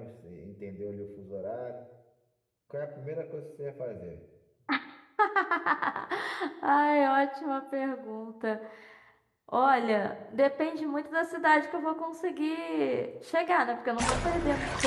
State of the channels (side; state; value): both; identical; correlation 1.00